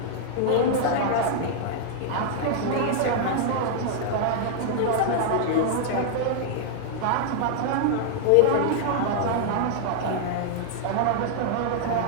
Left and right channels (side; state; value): both; different; correlation -0.01